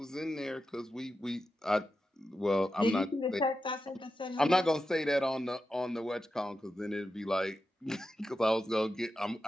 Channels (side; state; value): both; normal; correlation 0.90